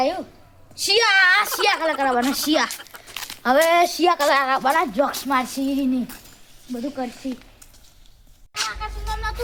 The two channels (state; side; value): identical; both; correlation 1.00